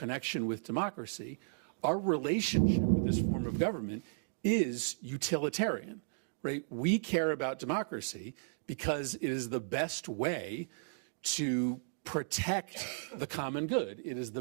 with democracy, our relationship with this form of government is utilitarian, right? We care about democracy because it is the best way to protect the common good. It is the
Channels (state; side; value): silent; left; digital silence